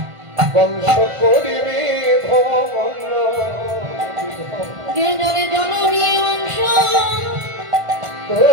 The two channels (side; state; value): left; late; 1.5 ms